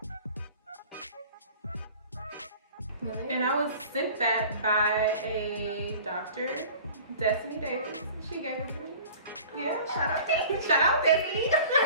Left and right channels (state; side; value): inverted; both; correlation -0.45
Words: Really? And I was sent that by a doctor, Destiny Davis. She gave it to me. Yeah, shout out Destiny.